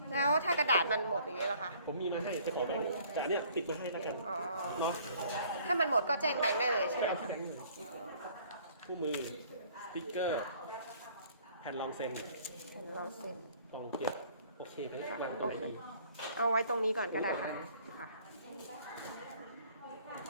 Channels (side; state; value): both; inverted; correlation -0.57